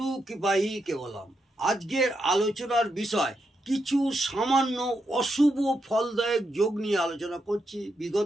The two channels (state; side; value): normal; both; correlation 0.83